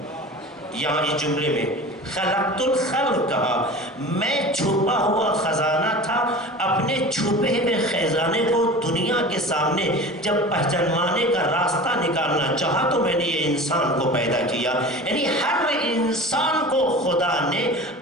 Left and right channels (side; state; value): both; normal; correlation 0.36